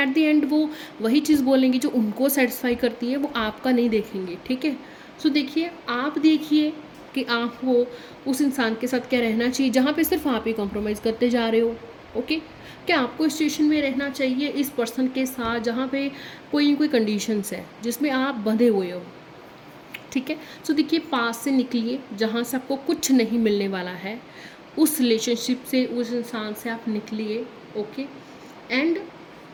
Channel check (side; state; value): both; identical; correlation 1.00